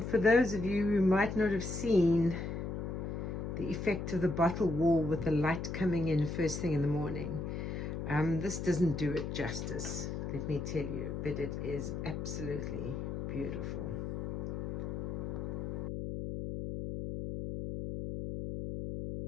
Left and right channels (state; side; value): noise; left; hum, 4 dB below the sound